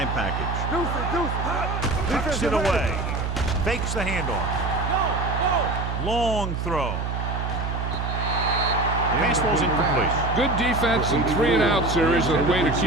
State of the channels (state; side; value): noise; right; hum, 3 dB below the sound